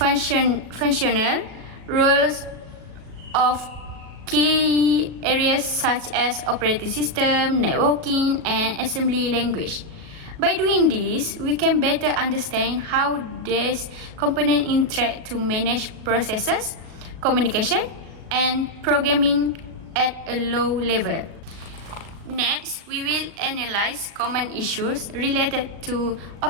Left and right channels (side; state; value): left; late; 37 ms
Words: roles of key areas such as operating system, networking, and assembly language. By doing this, we can better understand how these components interact to manage processes, communication, and programming at a low level. Next, we will analyze common issues related to